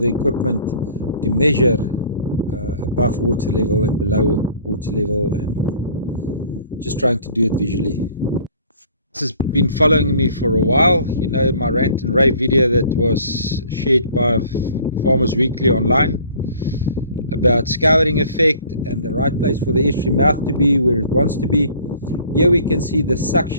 equipment to measure above water level and below water level, and just trying to do it visually. This has been following me for a while. You know, my rant and rave video that was shared by Farmers Weekly online about scouring effect and the right place for the estuary mouth to be where it wants to be. Here we can see the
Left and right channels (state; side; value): inverted; both; correlation -0.52